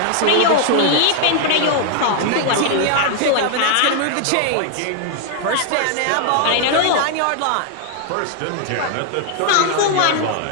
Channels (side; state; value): both; different; correlation 0.00